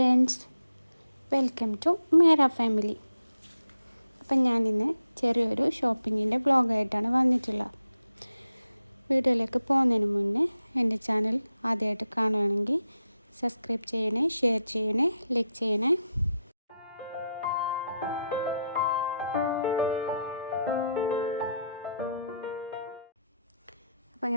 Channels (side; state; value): both; inverted; correlation -0.84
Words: വെൽക്കം ടു മേര ഫാമിലി. അപ്പം ഞാനിന്ന് ചെറിയൊരു ഷോപ്പിങ്ങിൻ്റെ വ്ളോഗായിട്ടാണ് വന്നിട്ടുള്ളത്. വീഡിയോയിലേക്ക് പോകുന്നതിന് മുന്നേ എൻ്റെ ചാനൽ ആദ്യമായിട്ട് കാണുകയാണെങ്കിൽ സബ്സ്ക്രൈബ് ചെയ്യണേ, ഷെയർ ചെയ്യണേ, ലൈക്ക് ചെയ്യണേ. അപ്പോൾ